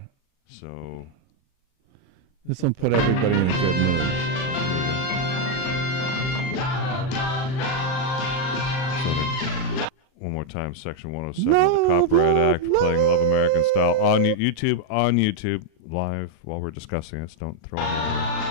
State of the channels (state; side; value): late; right; 38 ms